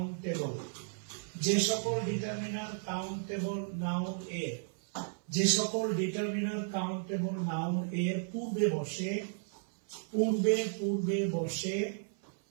যে সকল ডিটারমিনার কাউন্টেবল নাউন এর, যে সকল ডিটারমিনার কাউন্টেবল নাউন এর পূর্বে বসে,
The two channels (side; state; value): left; silent; 55 dB below the other